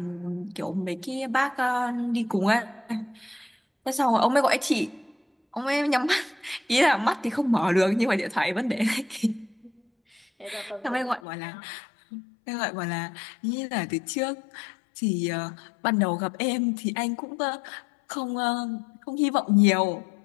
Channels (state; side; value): drops out; right; at 11.2 s